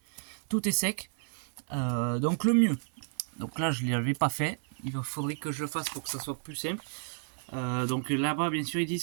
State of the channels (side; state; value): left; silent; 57 dB below the other